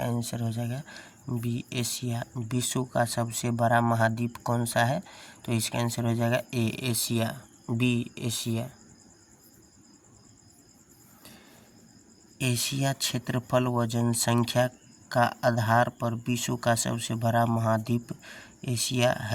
आंसर हो जाएगा बी, एशिया। विश्व का सबसे बड़ा महाद्वीप कौन सा है? तो इसका आंसर हो जाएगा A, Asia. B, Asia. Asia क्षेत्रफल व जनसंख्या का आधार पर विश्व का सबसे बड़ा महाद्वीप एशिया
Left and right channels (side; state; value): both; identical; correlation 1.00